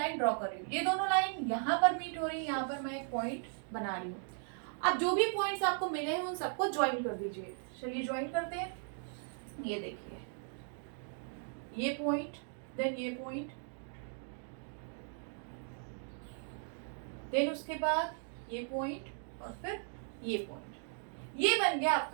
ड्रॉ कर रही हूँ। ये दोनों लाइन यहाँ पर मीट हो रही है, यहाँ पर मैं एक पॉइंट बना रही हूँ। अब जो भी पॉइंट्स आपको मिले हैं उन सबको ज्वाइन कर दीजिए। चलिए ज्वाइन करते हैं। ये देखिए ये पॉइंट, देन ये पॉइंट, देन उसके बाद ये पॉइंट और फिर ये पॉइंट। ये बन गया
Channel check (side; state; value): left; silent; 53 dB below the other